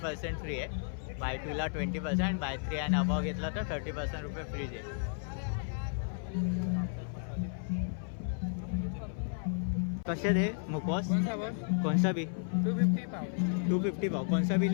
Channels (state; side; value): silent; right; 56 dB below the other